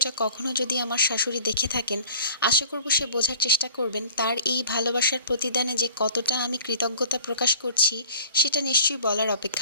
কখনো যদি আমার শাশুড়ি দেখে থাকেন, আশা করব সে বোঝার চেষ্টা করবেন তার এই ভালোবাসার প্রতিদানে যে কতটা আমি কৃতজ্ঞতা প্রকাশ করছি, সেটা নিশ্চয়ই বলার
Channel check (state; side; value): inverted; both; correlation -0.45